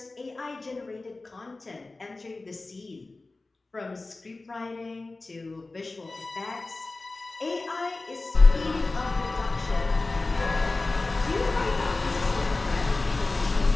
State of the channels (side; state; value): right; quieter; 3.3 dB